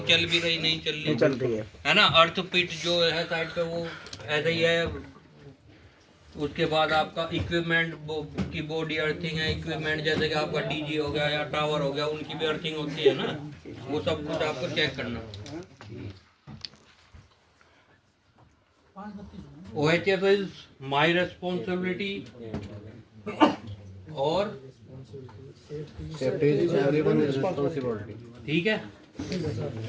भी रही नहीं चल रही है ना। अर्थ पिट जो है साइड पे वो ऐसा ही है। उसके बाद आपका इक्विपमेंट की बॉडी अर्थिंग है, इक्विपमेंट जैसे कि आपका DG हो गया या टावर हो गया, उनकी भी अर्थिंग होती है ना, वो सब कुछ आपको चेक करना। OHF इज माई रेस्पॉन्सिबिलिटी और सेफ्टी इज एवरीवन रिस्पांसिबिलिटी। ठीक है,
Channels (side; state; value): both; identical; correlation 1.00